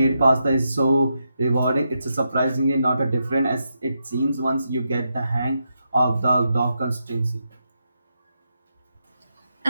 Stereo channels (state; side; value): inverted; both; correlation -0.84